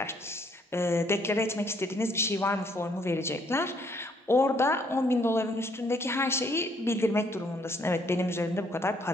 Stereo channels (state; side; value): normal; both; correlation 0.67